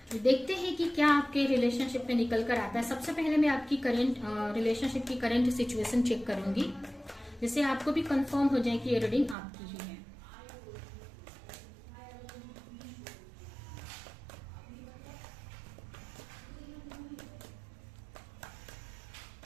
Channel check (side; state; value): left; drops out; at 9.3 s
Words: देखते हैं कि क्या आपके रिलेशनशिप में निकल कर आता है। सबसे पहले मैं आपकी करंट रिलेशनशिप की करंट सिचुएशन चेक करूंगी, जिससे आपको भी कंफर्म हो जाए कि ये रीडिंग आपकी ही है।